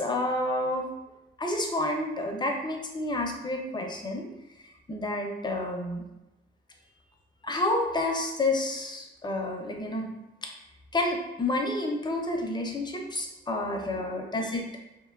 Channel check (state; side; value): normal; both; correlation 0.34